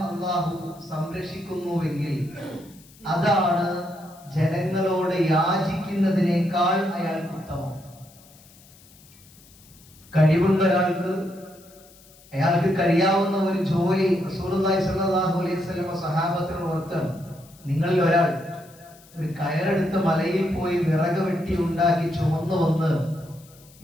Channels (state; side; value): noise; left; hiss, 25 dB below the sound